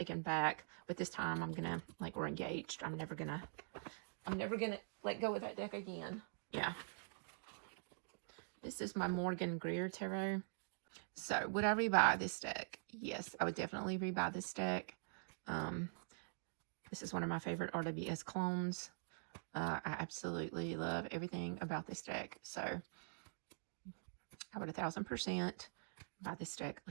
back, but this time I'm gonna, like, we're engaged. I'm never gonna let go of that deck again. Yeah. This is my Morgan Greer Tarot. So would I rebuy this deck? Yes, I would definitely rebuy this deck. This is one of my favorite RWS clones. I absolutely love everything about this deck. So I would 1000% buy this deck.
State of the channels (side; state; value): left; silent; digital silence